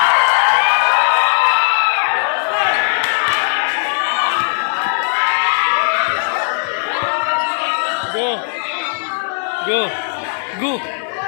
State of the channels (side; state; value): right; silent; 62 dB below the other